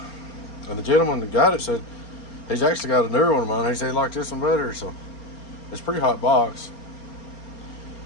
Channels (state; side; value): late; right; 4.3 ms